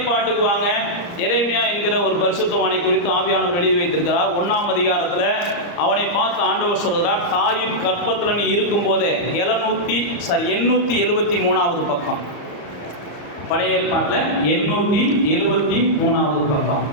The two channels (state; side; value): late; right; 34 ms